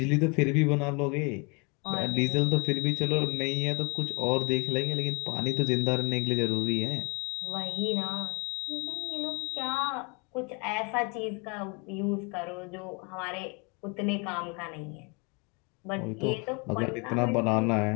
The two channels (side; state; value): right; quieter; 31.7 dB